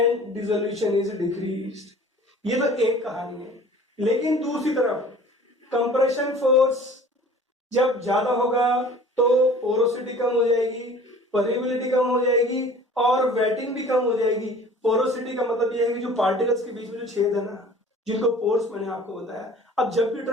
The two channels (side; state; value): both; normal; correlation 0.46